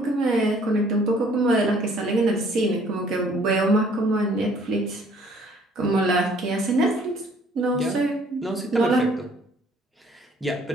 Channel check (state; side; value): normal; both; correlation 0.59